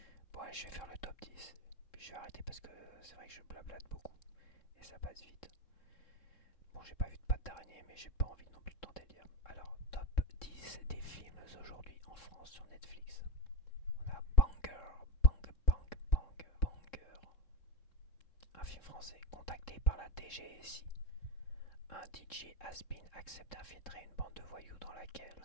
Bon allez, je vais faire le top 10. Puis je vais arrêter parce que c'est vrai que je blablate beaucoup. Et ça passe vite. Bon, j'ai pas vu de patte d'araignée, mais j'ai pas envie non plus de tenter le diable. Alors, top 10 des films aujourd'hui en France sur Netflix. On a Banger. Un film français contacté par la DGSI. Un DJ has-been accepte d'infiltrer une bande de voyous dans laquelle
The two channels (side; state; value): right; late; 3.7 ms